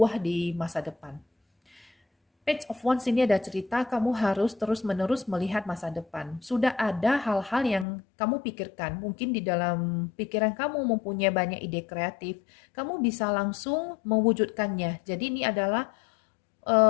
di masa depan. Page of Wands ini ada cerita kamu harus terus-menerus melihat masa depan. Sudah ada hal-hal yang kamu pikirkan. Mungkin di dalam pikiran kamu mempunyai banyak ide kreatif. Kamu bisa langsung mewujudkannya. Jadi ini adalah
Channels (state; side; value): drops out; right; at 7.9 s